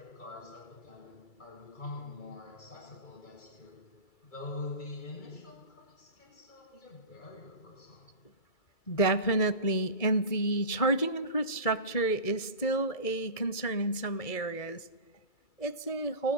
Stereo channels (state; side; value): late; right; 2.3 ms